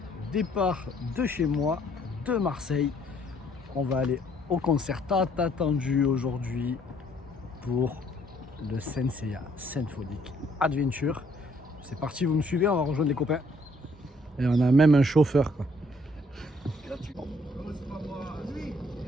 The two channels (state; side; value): normal; both; correlation 0.65